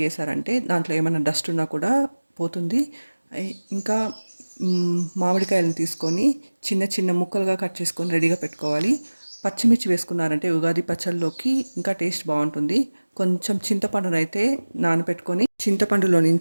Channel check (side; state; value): both; inverted; correlation -1.00